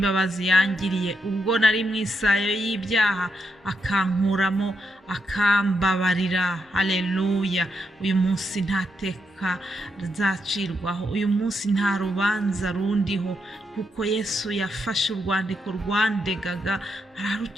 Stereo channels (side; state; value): both; normal; correlation 0.81